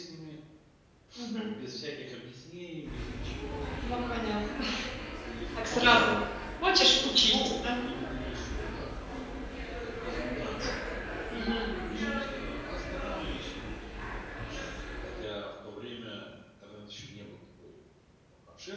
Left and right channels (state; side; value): identical; both; correlation 1.00